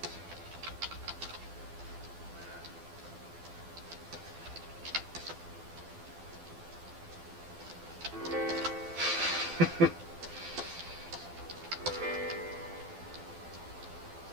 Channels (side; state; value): left; late; 12 ms